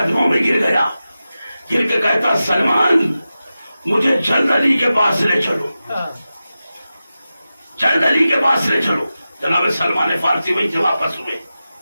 میں گر گیا، گر کے کہتا سلمان مجھے جلد علی کے پاس لے چلو، جلد علی کے پاس لے چلو۔ جناب سلمان فارسی وہیں سے واپس ہوئے،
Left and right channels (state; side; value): inverted; both; correlation -0.93